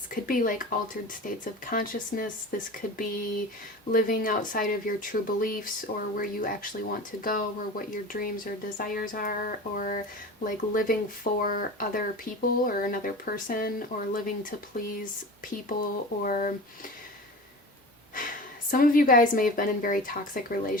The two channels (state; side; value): normal; both; correlation 0.33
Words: could be like altered states of consciousness. This could be living outside of your true beliefs, or where you actually want to go, or what your dreams or desires are, or like living for other people or another person, or living to please people. Or some of you guys may have been in very toxic